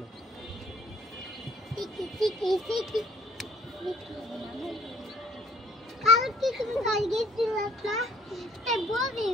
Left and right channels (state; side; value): normal; both; correlation 0.60